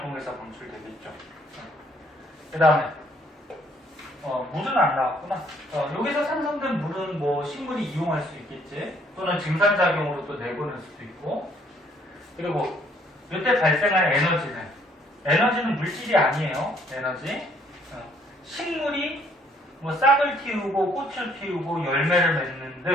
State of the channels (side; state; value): both; normal; correlation 0.64